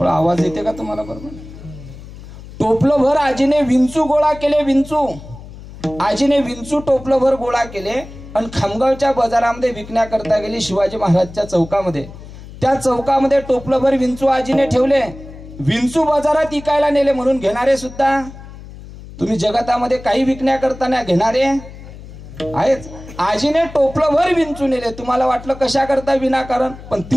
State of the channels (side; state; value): left; noise; hum, 16 dB below the sound